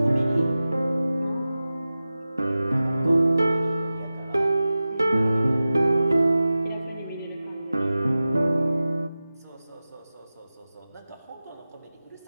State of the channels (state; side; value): inverted; both; correlation -0.95